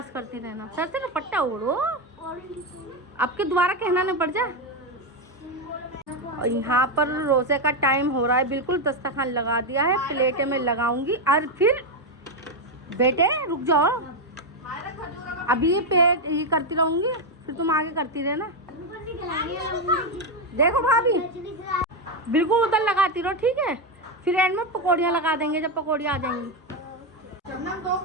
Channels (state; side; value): normal; both; correlation 0.06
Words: करती रहना। सर से दुपट्टा ओढ़ो, आपके दोबारा कहना नहीं पड़ जाए। और यहाँ पर रोज़े का टाइम हो रहा है, बिल्कुल दस्तरखान लगा दिया है, प्लेटें में लगाऊंगी। और फिर बेटे रुक जाओ, अभी ये पेट ये करती रहूंगी, फिर तुम आगे करती रहना। देखो भाभी बिल्कुल उधर लगाती रहो, ठीक है? फिर एंड में पकौड़ियाँ लगा देंगे जब पकौड़ियाँ आ जाएंगी। दो